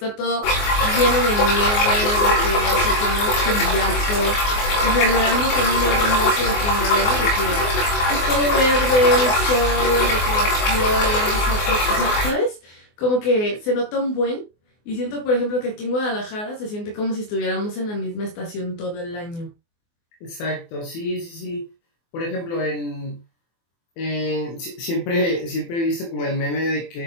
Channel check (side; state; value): right; late; 24 ms